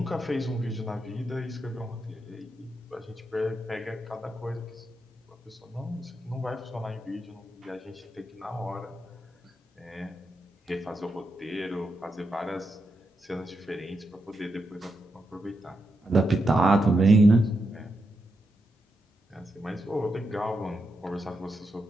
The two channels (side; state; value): both; normal; correlation 0.84